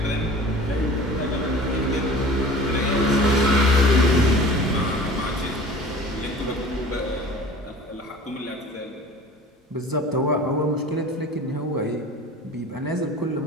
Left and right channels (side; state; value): both; normal; correlation 0.42